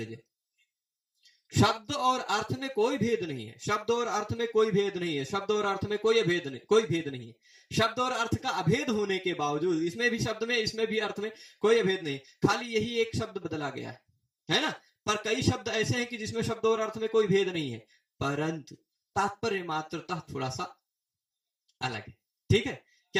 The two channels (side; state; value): both; identical; correlation 1.00